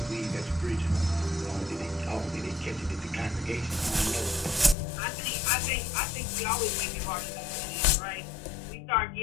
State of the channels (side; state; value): right; drops out; at 4.8 s